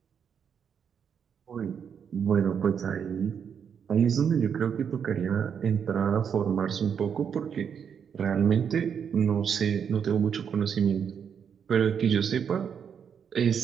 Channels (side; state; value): left; quieter; 7.4 dB